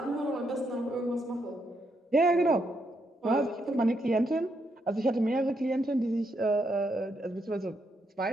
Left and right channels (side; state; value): both; normal; correlation 0.78